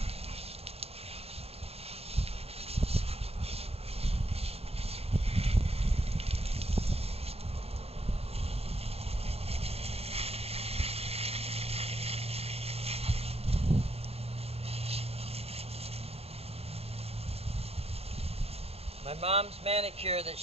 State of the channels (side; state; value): left; late; 0.29 ms